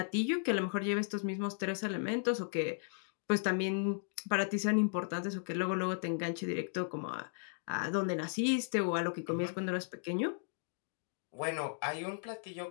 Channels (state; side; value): silent; right; digital silence